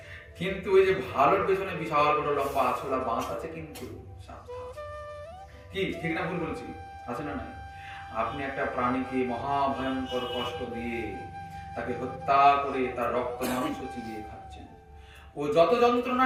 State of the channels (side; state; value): both; identical; correlation 1.00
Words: কিন্তু ওই যে ভালোর পেছনে বিশাল বড় লম্বা আছলা বাঁশ আছে, কিন্তু কি ঠিক না ভুল বলছি? আছে না? নাই? আপনি একটা প্রাণীকে মহাভয়ঙ্কর কষ্ট দিয়ে তাকে হত্যা করে তার রক্ত মাংস চিবিয়ে খাচ্ছেন। ও যত যন্ত্রণা